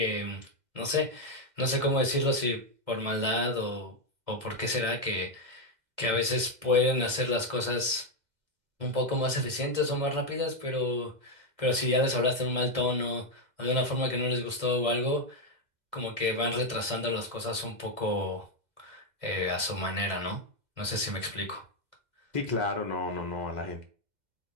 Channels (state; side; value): late; left; 2.1 ms